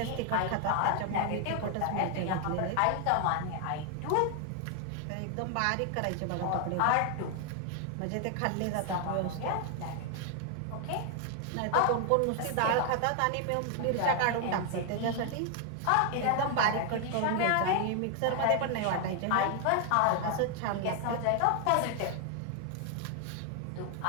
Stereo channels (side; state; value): both; different; correlation 0.00